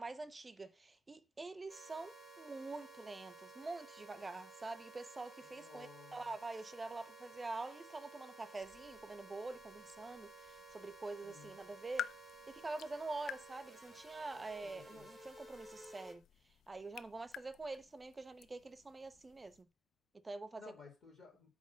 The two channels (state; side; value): normal; both; correlation 0.88